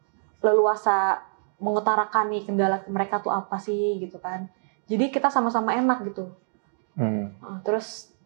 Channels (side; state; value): left; silent; digital silence